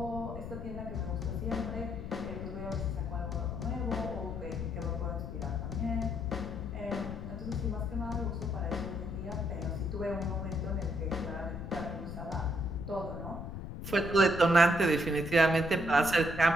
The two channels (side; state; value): left; noise; rumble, 8 dB below the sound